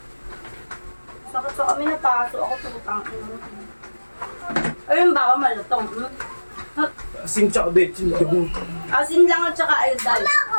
Sakit sa kami na paso. Ako tutang. Ayun ba ako malutong? Asin tsaka betsin. Asin lang at saka ayodal.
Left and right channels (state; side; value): inverted; both; correlation -1.00